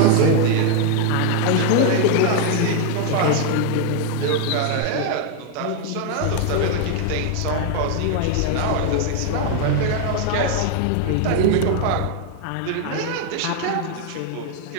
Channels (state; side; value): different; both; correlation 0.00